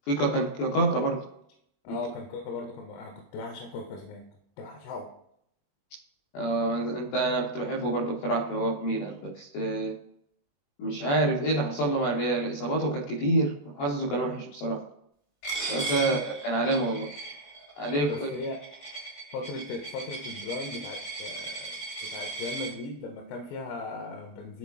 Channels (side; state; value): right; late; 21 ms